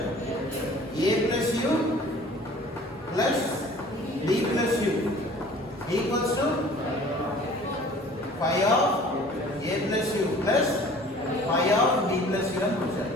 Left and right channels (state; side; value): normal; both; correlation 0.48